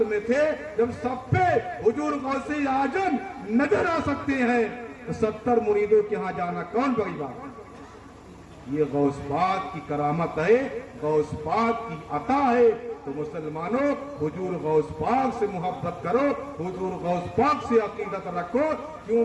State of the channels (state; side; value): identical; both; correlation 1.00